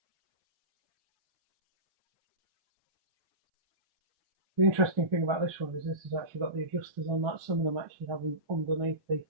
The interesting thing about this one is this has actually got the adjusters on that. Some of them actually have them underneath the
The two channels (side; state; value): left; late; 1.3 ms